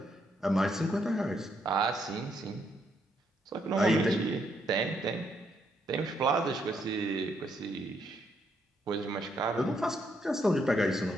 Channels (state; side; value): normal; both; correlation 0.75